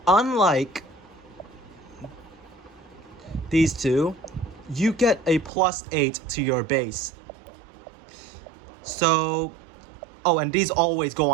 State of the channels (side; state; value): left; drops out; at 5.5 s